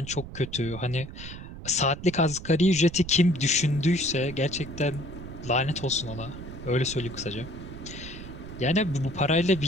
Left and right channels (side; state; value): right; noise; rumble, 12 dB below the sound